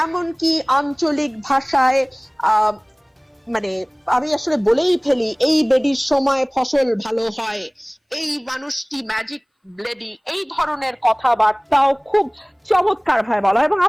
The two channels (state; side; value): identical; both; correlation 1.00